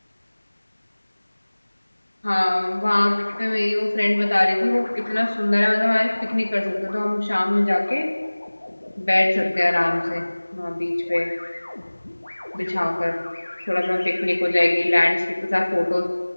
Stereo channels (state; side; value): inverted; both; correlation -1.00